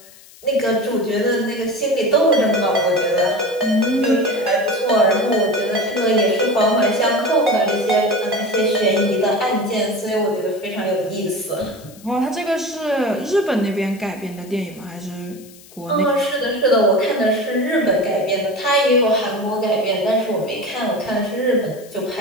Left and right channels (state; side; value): noise; left; hiss, 23 dB below the sound